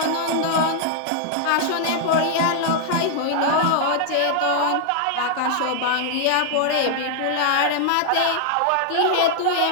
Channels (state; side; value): different; both; correlation -0.01